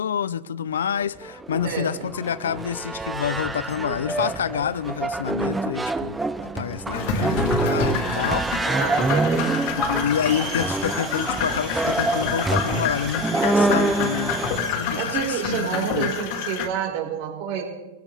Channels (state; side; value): normal; both; correlation 0.18